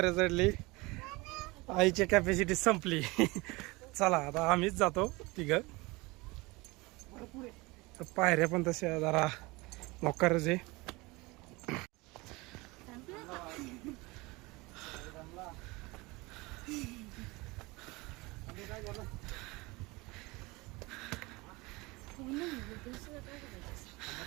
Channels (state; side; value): quieter; left; 23.6 dB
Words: चढली, आईची कॅपॅसिटी संपली. चला आता आम्हीच जातो तिघं. पायऱ्या पण तशा जरा मोकारच आहे.